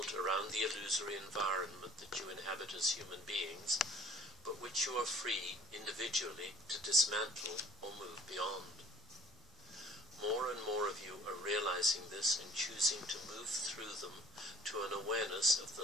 around the illusory environment that you inhabit as human beings, but which you are free individually to dismantle or move beyond. More and more of you are realizing this and choosing to move through them to an awareness of the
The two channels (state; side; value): normal; both; correlation 0.52